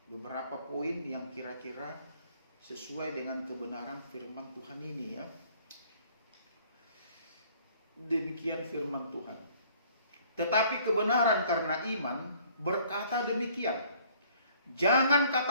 beberapa poin yang kira-kira sesuai dengan kebenaran firman Tuhan ini ya. Demikian firman Tuhan. Tetapi kebenaran karena iman berkata demikian. Jangan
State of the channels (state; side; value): inverted; both; correlation -0.58